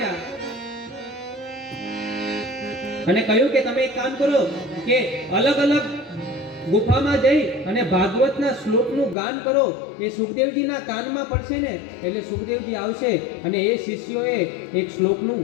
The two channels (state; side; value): drops out; right; at 9.2 s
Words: અને કહ્યું કે તમે એક કામ કરો કે અલગ અલગ ગુફામાં જઈ અને ભાગવતના શ્લોકનું ગાન કરો. એ સુખદેવજીના કાનમાં પડશે ને એટલે સુખદેવજી આવશે. અને એ શિષ્યોએ એક શ્લોકનું